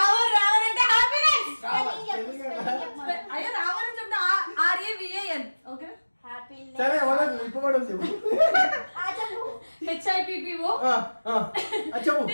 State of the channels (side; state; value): both; inverted; correlation -1.00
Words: అంటే హ్యాపీనెస్. అయ్యో రావర్ అని చెప్తా RAVAN. ఓకే సరే వదలు ఇప్పబడదు చెప్పు. HIPPO చెప్పు.